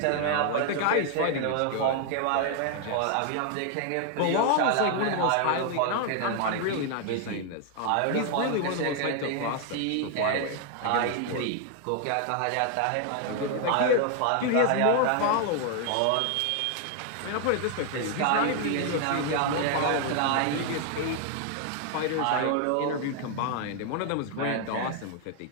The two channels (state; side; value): different; both; correlation 0.00